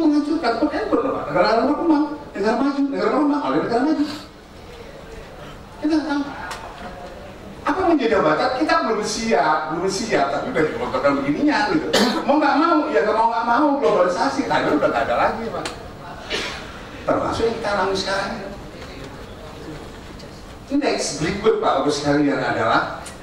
Bukan bener Pak, negara berkembang, negara maju, oleh negara maju. Kita nggak tahu. Apa menjadi jabatan kita belum siap, tapi udah dikontrol begininya gitu. Mau nggak mau globalisasi, tadi udah nggak ada lagi Pak. Termasuk yang kita alami sekarang ini. Next berikut Pak Ibu sekalian adalah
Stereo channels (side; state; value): both; identical; correlation 1.00